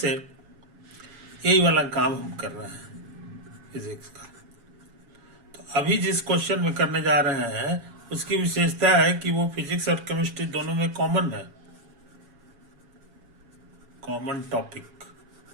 यही वाला काम हम कर रहे हैं फिजिक्स का। तो अभी जिस क्वेश्चन में करने जा रहे हैं उसकी विशेषता है कि वो फिजिक्स और केमिस्ट्री दोनों में कॉमन है, कॉमन टॉपिक,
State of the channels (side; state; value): left; late; 7.2 ms